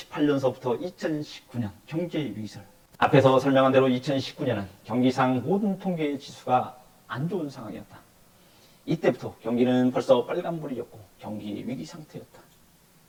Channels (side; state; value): both; identical; correlation 1.00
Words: 2019년 경제 위기설. 앞에서 설명한 대로 2019년은 경기상 모든 통계 지수가 안 좋은 상황이었다. 이때부터 경기는 벌써 빨간불이었고 경기 위기 상태였다.